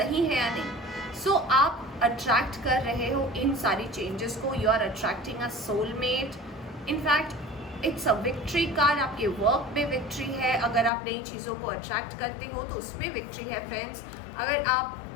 हैं या नहीं। सो आप अट्रैक्ट कर रहे हो इन सारी चेंजेस को, you are attracting a soulmate. In fact it's a victory card, आपके वर्क में विक्ट्री है, अगर आप नई चीज़ों को अट्रैक्ट करते हो तो उसमें विक्ट्री है फ्रेंड्स। अगर आप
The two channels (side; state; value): right; drops out; at 10.9 s